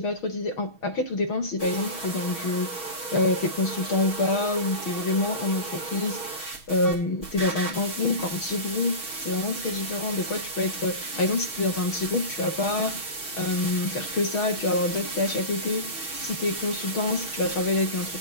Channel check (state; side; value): late; right; 6.3 ms